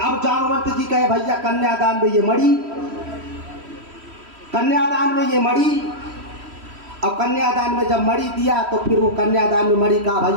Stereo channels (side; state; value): left; late; 3.1 ms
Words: जामवंत जी कहे भैया कन्यादान में ये मणि, कन्यादान में ये मणि। अब कन्यादान में जब मणि दिया तो फिर वो कन्यादान में मणि का